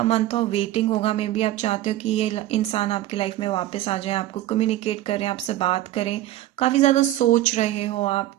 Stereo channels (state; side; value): quieter; left; 14.7 dB